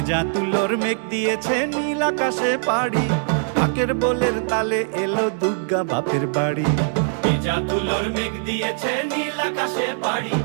তুলোর মেঘ দিয়েছে নীল আকাশে পাড়ি, ঢাকের বোলের তালে এলো দুর্গা বাপের বাড়ি। ভেজা তুলোর মেঘ দিয়েছে নীল আকাশে পাড়ি,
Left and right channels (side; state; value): left; silent; digital silence